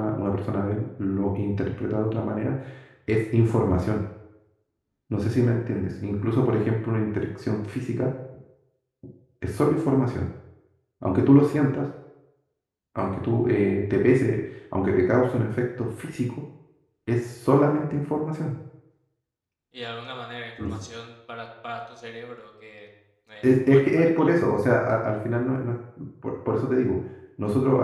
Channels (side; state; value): both; identical; correlation 1.00